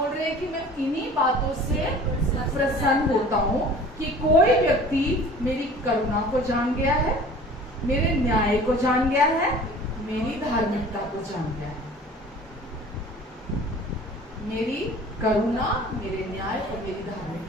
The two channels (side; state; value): both; normal; correlation 0.46